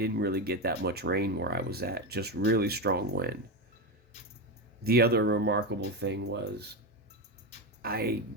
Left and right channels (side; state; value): both; normal; correlation 0.13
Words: really get that much rain where I was at, just really strong wind. The other remarkable thing was I